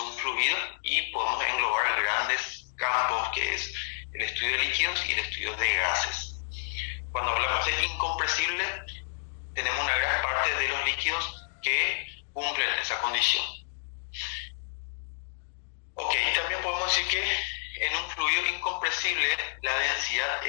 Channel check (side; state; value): right; silent; digital silence